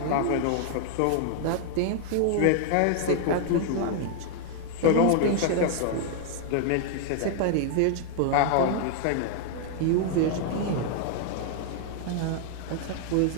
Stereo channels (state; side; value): different; both; correlation -0.01